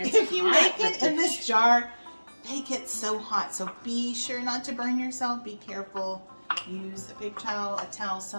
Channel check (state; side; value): inverted; both; correlation -1.00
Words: you make it in this jar, make it so hot. So be sure not to burn yourself. Be careful. Use a paper towel, a towel,